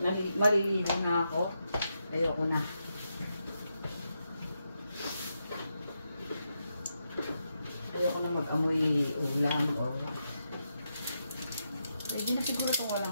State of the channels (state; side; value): inverted; both; correlation -0.84